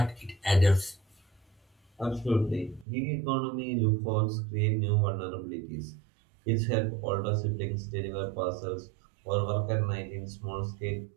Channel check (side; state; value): left; drops out; at 2.9 s